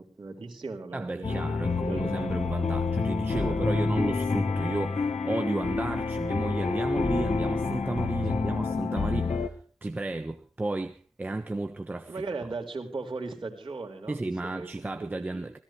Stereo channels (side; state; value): both; normal; correlation 0.87